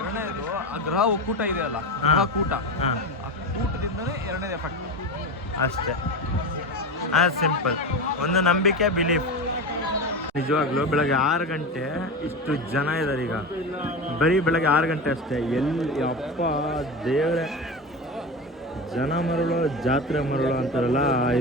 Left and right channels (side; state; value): both; normal; correlation 0.22